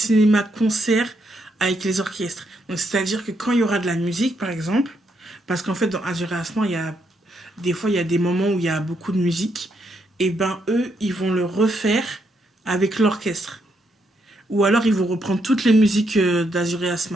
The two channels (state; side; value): normal; both; correlation 0.77